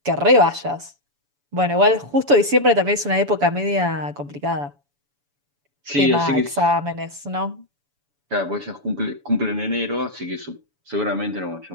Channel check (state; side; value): late; left; 7.0 ms